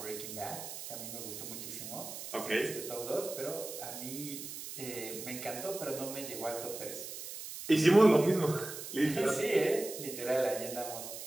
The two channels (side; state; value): right; noise; hiss, 9 dB below the sound